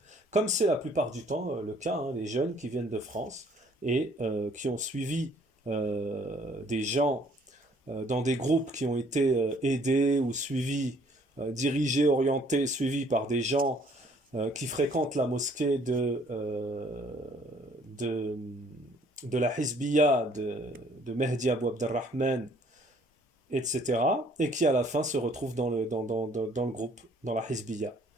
Comme c'est la plupart du temps le cas, hein, les jeunes qui viennent de France et qui ont suivi des gens dans des groupes qui ont été aidés ou suivis, dirigés, orientés, suivis par des gens qui fréquentent la mosquée de la Hizbiyya de Mehdi Abou Abdelrahman, etc. Et qui à la fin se retrouvent dans le groupe, dans la Hizbiyya.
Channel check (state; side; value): normal; both; correlation 0.60